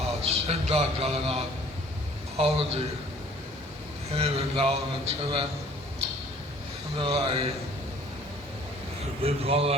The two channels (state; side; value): normal; both; correlation 0.54